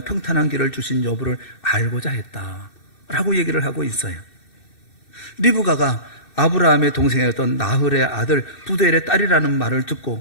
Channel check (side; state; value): right; late; 2.6 ms